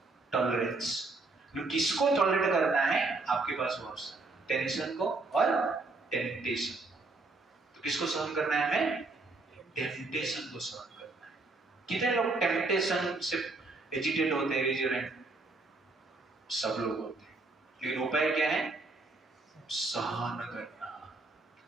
टॉलरेंस। किसको टॉलरेट करना है, आपके पास वो ऑप्शन, टेंशन को और टेम्पटेशन। तो किसको सहन करना है हमें, टेम्पटेशन को सहन करना है। कितने लोग टेम्पटेशन से एजिटेट होते हैं, रेजिडेंट सब लोग होते हैं, लेकिन उपाय क्या है, सहन करना,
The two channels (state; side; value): quieter; left; 3.4 dB